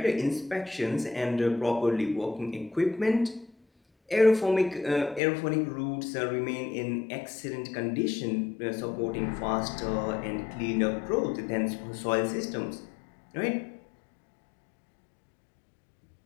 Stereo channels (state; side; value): drops out; right; at 5.2 s